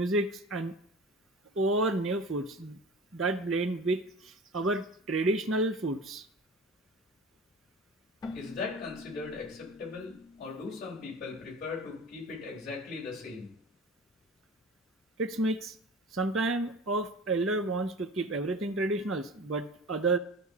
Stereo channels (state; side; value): normal; both; correlation 0.36